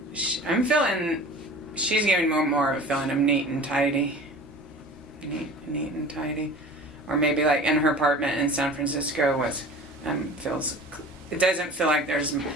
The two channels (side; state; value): both; normal; correlation 0.41